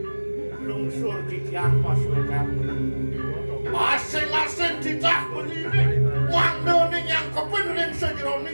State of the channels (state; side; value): inverted; both; correlation -1.00